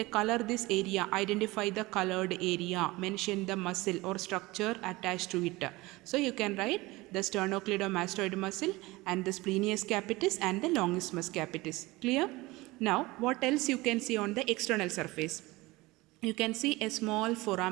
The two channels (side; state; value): left; quieter; 21.1 dB